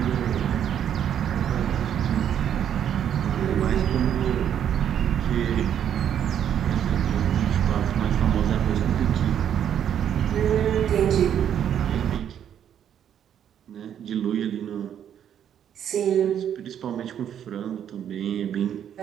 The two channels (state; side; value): quieter; left; 9.5 dB